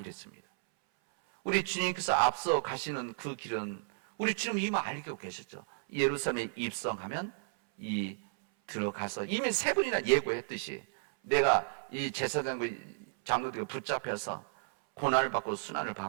우리 주님께서 앞서 가시는 그 길은 우리 주님 이미 알고 계셨죠. 예루살렘에 입성하면 들어가서 이미 세 번이나 예고했듯이 내가 이 제사장과 장로들과 붙잡혀서 고난을 받고 순환을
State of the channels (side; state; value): left; silent; 56 dB below the other